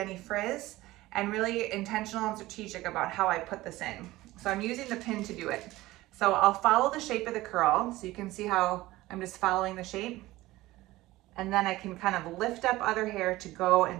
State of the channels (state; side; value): quieter; left; 17.9 dB